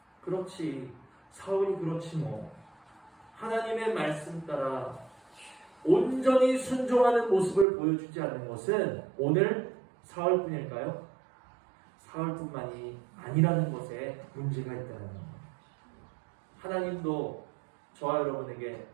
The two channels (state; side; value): drops out; left; at 7.7 s